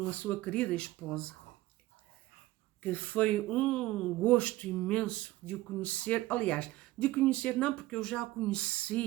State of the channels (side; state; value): left; quieter; 17.6 dB